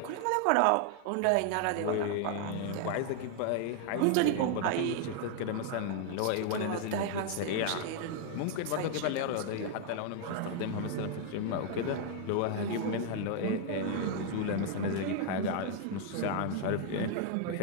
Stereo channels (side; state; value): both; different; correlation 0.00